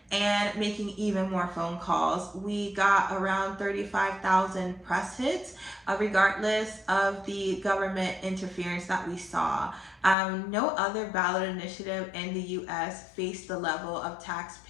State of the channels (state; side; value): drops out; right; at 10.2 s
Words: and making even more phone calls. We got around 35,000 press hits, regardless of the government interference that we saw. No other ballot initiative in the US faced the level of